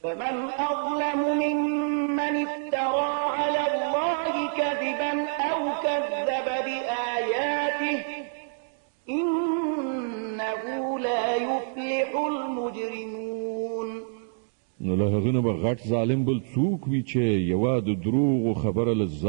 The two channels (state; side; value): silent; left; digital silence